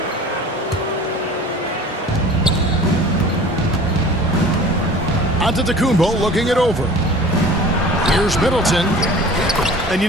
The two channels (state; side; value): normal; both; correlation 0.43